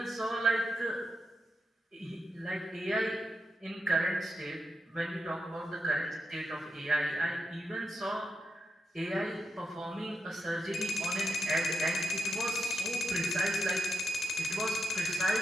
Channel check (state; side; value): normal; both; correlation 0.85